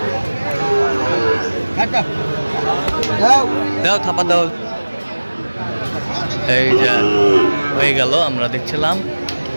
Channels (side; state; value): both; inverted; correlation -1.00